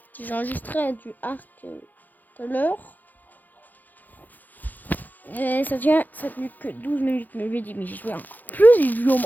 J'ai enregistré du arc tout à l'heure. Et ça tient que 12 minutes, mais je lui ai dit, mais j'ai joué en plus, j'ai joué au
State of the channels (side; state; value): right; late; 0.084 ms